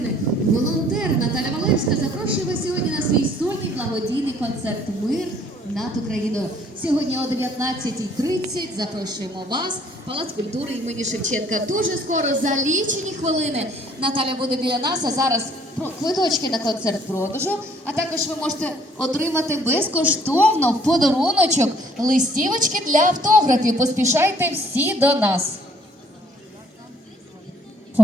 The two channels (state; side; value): normal; both; correlation 0.60